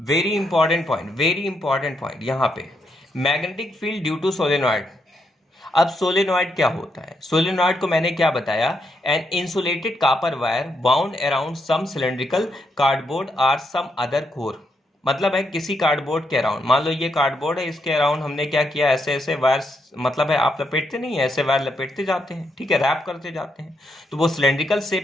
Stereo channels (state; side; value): normal; both; correlation 0.79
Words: important point यहाँ पे, magnetic field due to solenoid. अब सोलेनॉइड क्या होता है, सोलेनॉइड को मैंने क्या बताया, an insulated copper wire bound around some cylindrical cardboard और सम अदर कोर। मतलब है किसी कार्डबोर्ड के अराउंड, मान लो ये कार्डबोर्ड है, इसके अराउंड हमने क्या किया, ऐसे ऐसे वायर, मतलब है आप लपेटते नहीं है, ऐसे वायर लपेटते जाते हैं, ठीक है, रैप करते जाते हैं। तो वो सिलेंड्रिकल